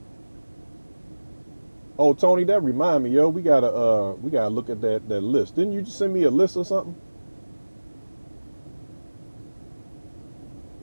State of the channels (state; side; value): inverted; both; correlation -1.00